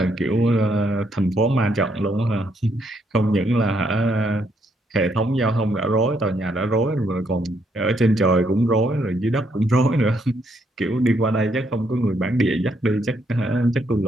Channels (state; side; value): normal; both; correlation 0.73